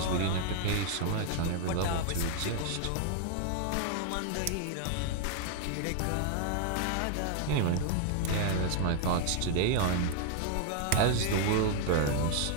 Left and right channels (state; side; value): different; both; correlation 0.00